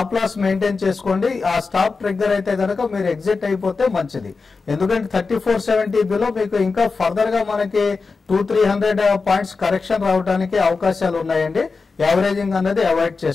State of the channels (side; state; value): right; quieter; 4.4 dB